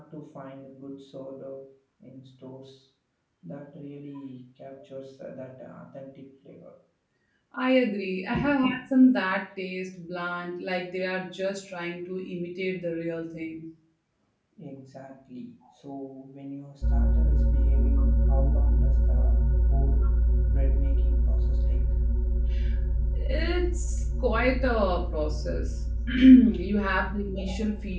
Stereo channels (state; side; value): identical; both; correlation 1.00